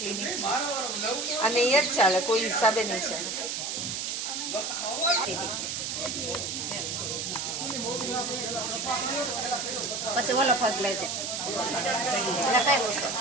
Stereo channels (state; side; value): noise; right; hiss, 3 dB below the sound